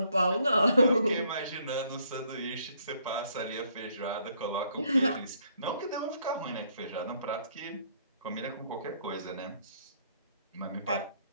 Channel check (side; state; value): both; inverted; correlation -0.68